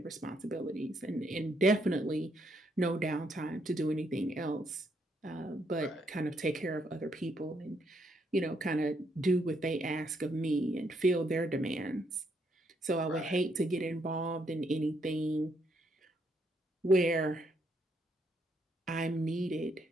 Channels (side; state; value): both; normal; correlation 0.74